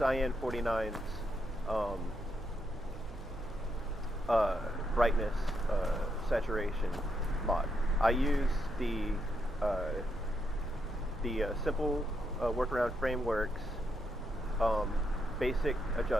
49's brightness saturation mod. I use the simple workaround frameworks basic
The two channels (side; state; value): right; noise; hum, 13 dB below the sound